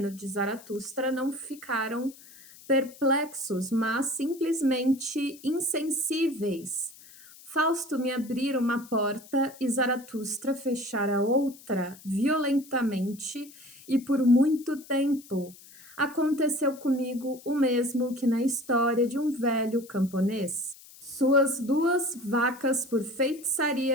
de Zaratustra, não ficaram perplexos, mas simplesmente insensíveis. Fausto me abrira uma porta e Zaratustra fechara outra violentamente e por muito tempo. Aconteceu comigo o mesmo que na história de um velho camponês. Suas duas vacas, por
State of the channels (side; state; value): left; noise; hiss, 21 dB below the sound